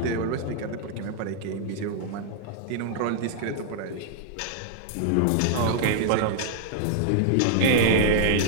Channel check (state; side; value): different; both; correlation -0.01